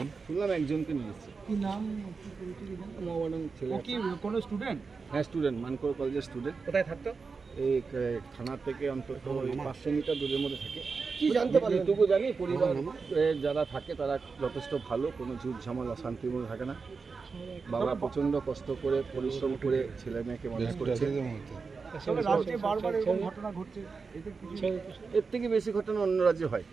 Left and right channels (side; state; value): left; quieter; 4.8 dB